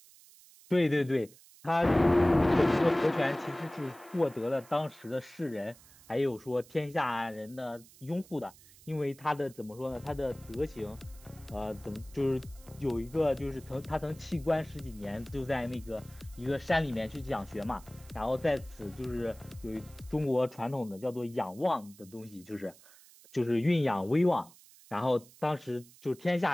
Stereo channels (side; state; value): right; noise; hiss, 23 dB below the sound